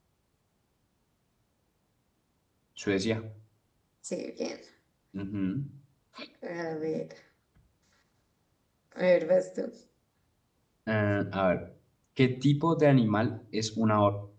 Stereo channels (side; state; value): both; identical; correlation 1.00